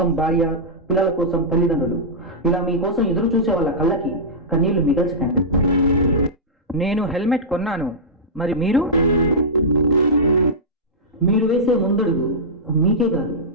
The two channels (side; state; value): both; normal; correlation -0.11